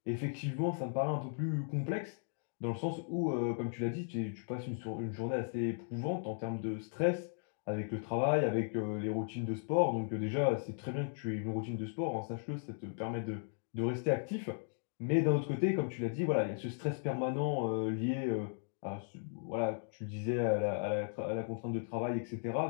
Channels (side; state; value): right; silent; digital silence